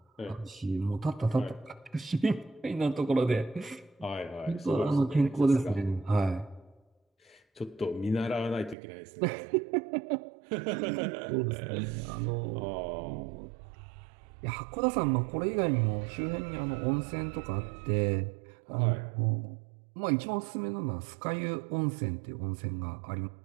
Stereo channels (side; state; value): left; drops out; at 8.8 s